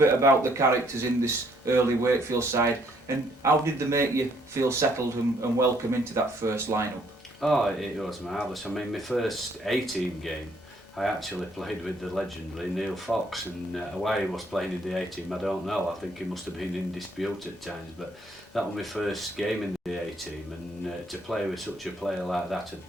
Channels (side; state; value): both; normal; correlation 0.67